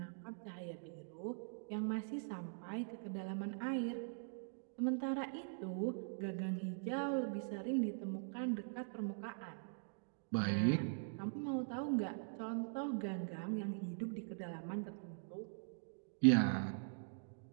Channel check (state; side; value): silent; left; digital silence